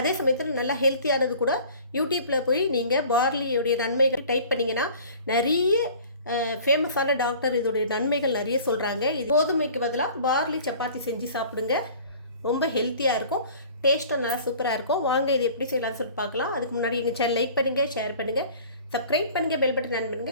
அதே சமயத்தில் நல்லா ஹெல்த்தியானது கூட. யூடியூப்பில் போய் நீங்கள் பார்லியோடைய நன்மைகள் டைப் பண்ணிங்கன்னா நிறைய ஃபேமஸான டாக்டர் இதோடைய நன்மைகள் நிறைய சொல்கிறாங்க. இது கோதுமைக்கு பதிலாக பார்லி சப்பாத்தி செஞ்சு சாப்பிடுங்க. ரொம்ப ஹெல்த்தியாக இருக்கும், டேஸ்ட்டும் நல்லா சூப்பராக இருக்கும். வாங்க இது எப்படி செய்யலாம்னு சொல்லிட்டு பார்க்கலாம். அதுக்கு முன்னாடி எங்கள் சேனல் லைக் பண்ணுங்கள், ஷேர் பண்ணுங்கள், சப்ஸ்கிரைப் பண்ணுங்கள், பெல் பட்டன் ஆன்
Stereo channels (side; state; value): both; inverted; correlation -0.47